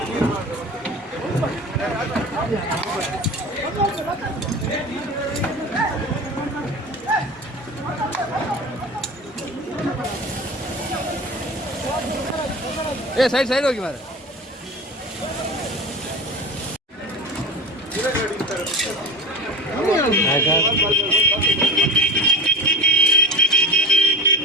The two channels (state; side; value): normal; both; correlation 0.32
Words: ಸೈಡ್ ಸೈಡ್ ಹೋಗಿ ಮಾರ.